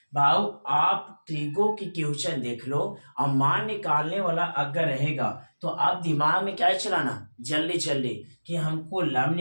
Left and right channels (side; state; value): both; inverted; correlation -1.00